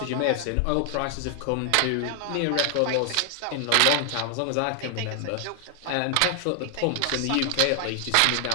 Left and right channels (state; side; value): different; both; correlation 0.00